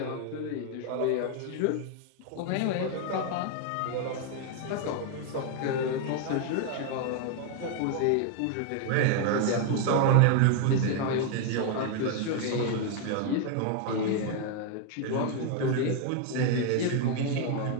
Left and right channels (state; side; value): different; both; correlation 0.00